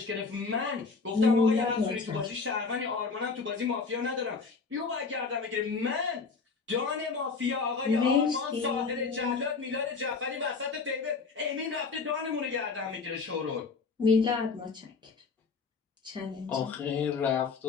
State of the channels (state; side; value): quieter; right; 4.8 dB